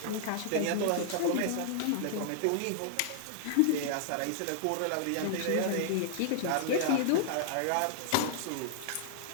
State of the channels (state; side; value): different; both; correlation -0.01